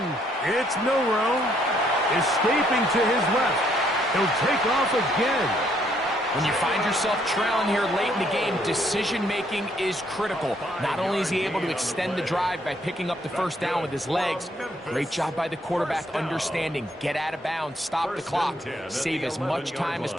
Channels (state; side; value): normal; both; correlation 0.69